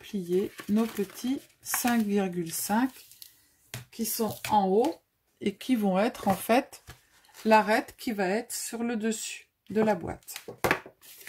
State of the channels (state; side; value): identical; both; correlation 1.00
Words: nos petits 5,5 qui sont en haut et qui vont être en fait l'arête qui va être sur le dessus de la boîte.